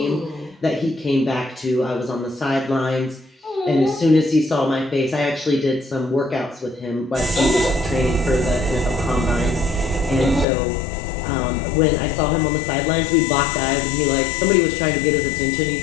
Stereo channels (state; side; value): drops out; right; at 10.5 s